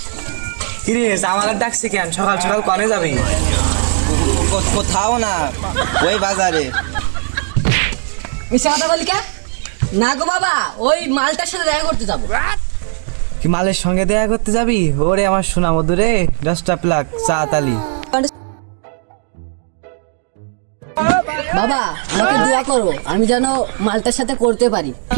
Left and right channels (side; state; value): left; silent; 68 dB below the other